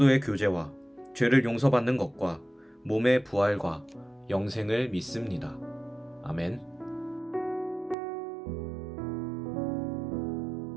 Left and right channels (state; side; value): drops out; left; at 8.0 s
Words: 교제와 죄를 용서받는 것과 몸의 부활과 영생을 믿습니다. 아멘.